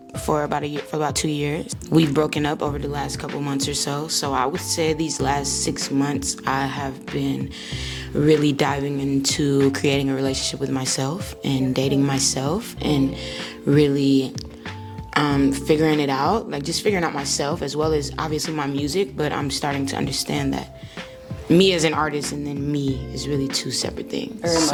for about 2 years. We've broken up over the last couple months or so. So I would say these last 6 months I have been really diving into creating a relationship with myself and dating myself and really figuring it out, like just figuring out myself as well as obviously my music, but I'm starting to understand that me as an artist and then me is really two separate things.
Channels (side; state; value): both; identical; correlation 1.00